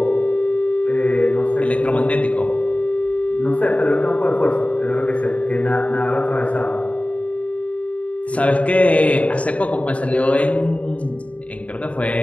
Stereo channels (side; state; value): right; late; 0.066 ms